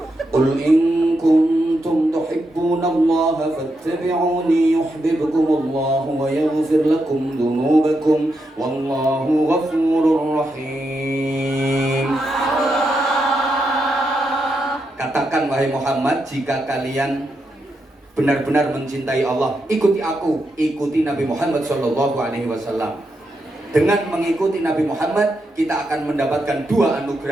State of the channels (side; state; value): both; normal; correlation 0.84